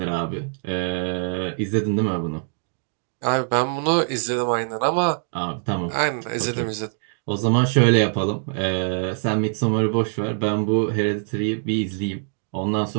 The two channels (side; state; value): left; silent; digital silence